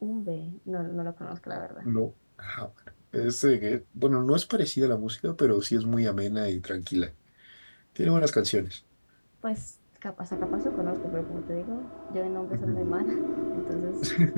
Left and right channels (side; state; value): both; inverted; correlation -1.00